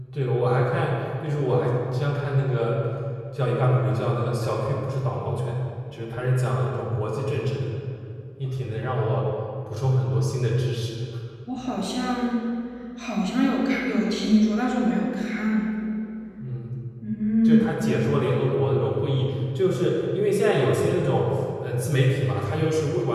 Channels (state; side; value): identical; both; correlation 1.00